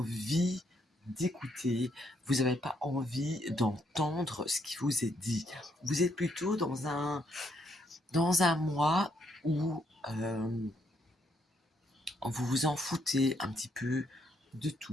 d'écouter, vous n'avez pas envie d'entendre ce qui vous est dit. Vous êtes plutôt dans un mois où vous vous en foutez un petit peu de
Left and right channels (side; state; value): both; normal; correlation 0.73